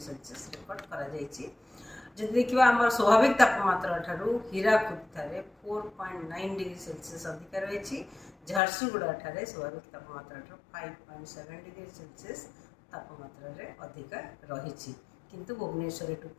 सेल्सियस रेकर्ड करा जायछि। जदि देखिबा हमर स्वाभाविक तापमात्रा ठारू हीराकुद ठारे 4.9 डिग्री सेल्सियस अधिक रहिछि। झारसुगुड़ा ठारे स्वाभाविक तापमात्रा ठारू 5.7 डिग्री सेल्सियस तापमात्रा रे अधिक रहिछि, किंतु भुवनेश्वर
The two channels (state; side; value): drops out; right; at 8.6 s